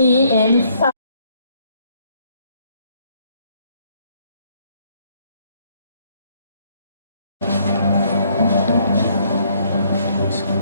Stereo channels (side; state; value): both; inverted; correlation -0.67